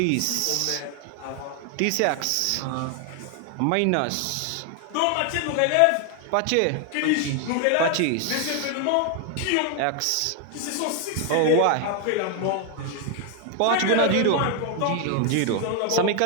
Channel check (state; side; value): different; both; correlation 0.01